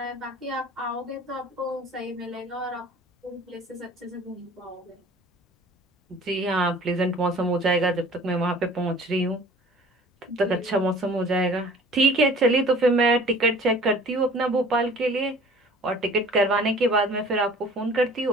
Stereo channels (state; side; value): normal; both; correlation 0.47